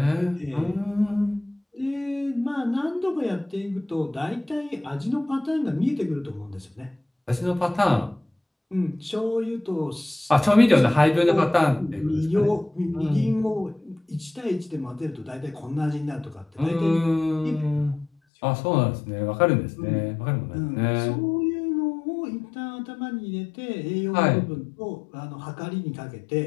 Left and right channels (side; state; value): right; drops out; at 18.1 s